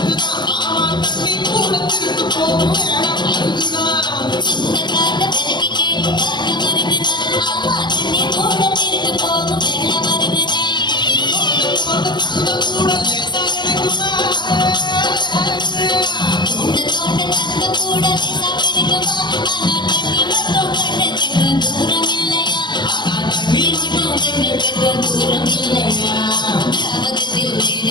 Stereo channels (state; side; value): late; right; 0.21 ms